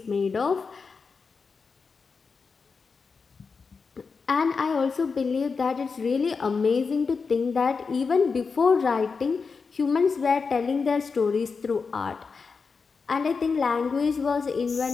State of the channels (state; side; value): quieter; right; 5.0 dB